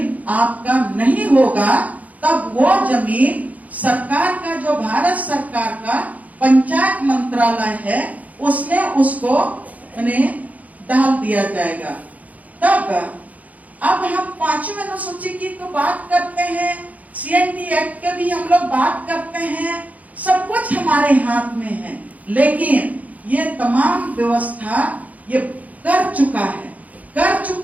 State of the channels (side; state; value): left; late; 0.074 ms